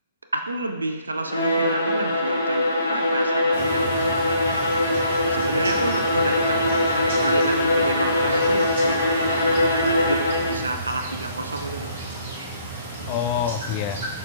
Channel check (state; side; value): inverted; both; correlation -0.66